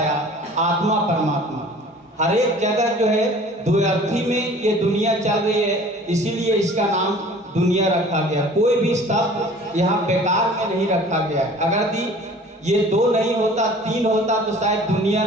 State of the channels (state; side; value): normal; both; correlation 0.47